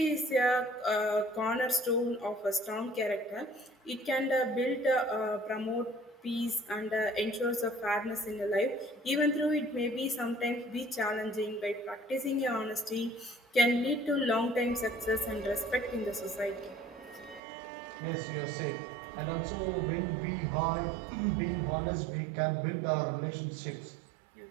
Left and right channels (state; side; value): drops out; left; at 17.4 s